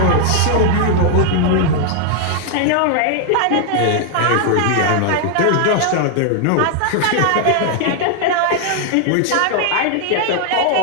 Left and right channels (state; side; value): different; both; correlation 0.00